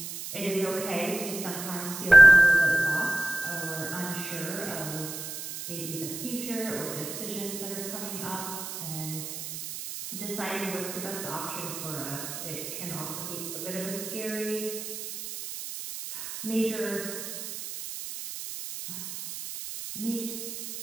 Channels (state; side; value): noise; right; hiss, 8 dB below the sound